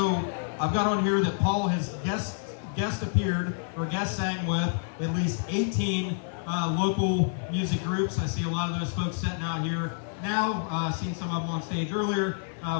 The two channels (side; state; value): right; silent; 58 dB below the other